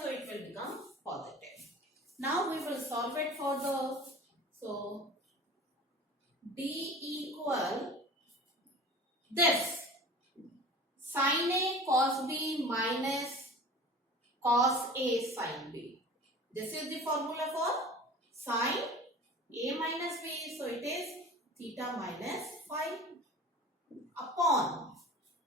it will become positive. Now we will solve it further. So d equal this sin a cos b minus cos a sin b. This is the formula for sin a minus b. So it is theta minus phi upon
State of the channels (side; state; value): both; normal; correlation 0.40